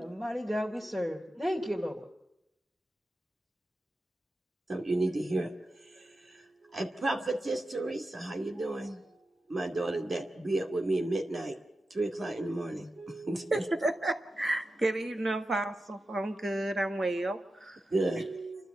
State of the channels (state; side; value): normal; both; correlation 0.92